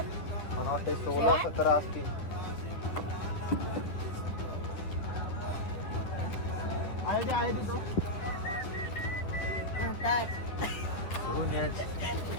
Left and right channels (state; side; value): late; right; 10 ms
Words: मला वाटते 16-17 असतील. आहे तिथं धुवून ये.